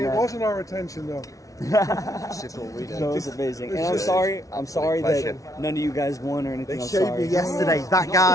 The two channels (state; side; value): late; right; 0.17 ms